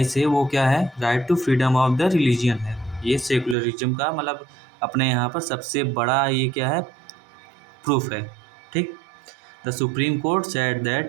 है वो क्या है? Right to freedom of the religion है। ये सेकुलरिज्म का मतलब अपने यहाँ पर सबसे बड़ा ये क्या है? प्रूफ है, ठीक। The supreme court said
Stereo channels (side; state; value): left; drops out; at 3.6 s